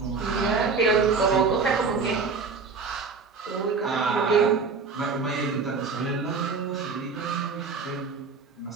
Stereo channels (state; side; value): quieter; left; 4.8 dB